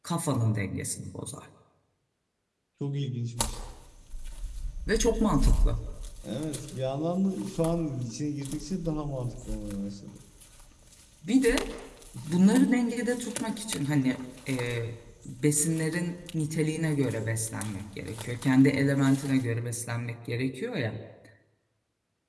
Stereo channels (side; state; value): both; identical; correlation 1.00